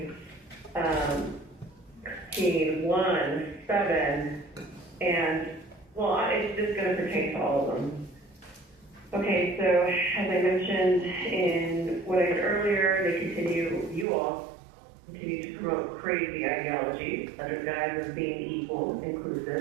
16, 1, 7, and, well, it's just going to pertain to all of them. Okay, so as I mentioned in what I said earlier, you all continue to promote crazy ideology under guise of being equal,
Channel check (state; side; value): drops out; left; at 14.1 s